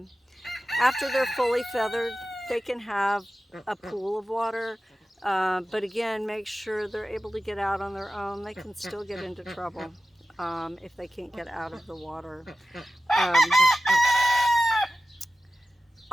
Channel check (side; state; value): both; normal; correlation 0.94